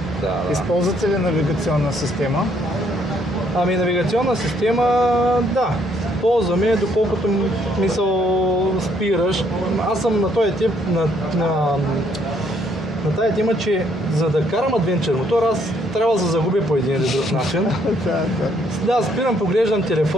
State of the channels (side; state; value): both; normal; correlation 0.69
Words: Да. Използвате ли навигационна система? Ами навигационна система, да. Ползваме, доколкото мисъл спираш. Аз съм на този тип, на тази тема, че за да карам адвенчър мотор, аз трябва да се загубя по един или друг начин. Да, спирам, поглеждам